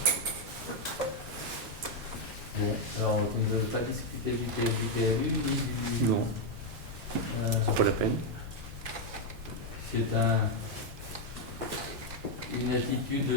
du PLU ni du... Non, c'est pas la peine. C'est une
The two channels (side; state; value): both; normal; correlation 0.02